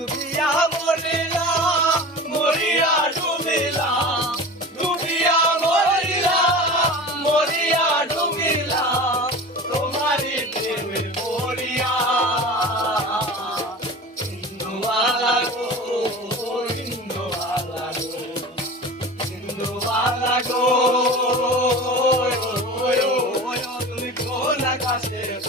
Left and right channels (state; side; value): normal; both; correlation 0.34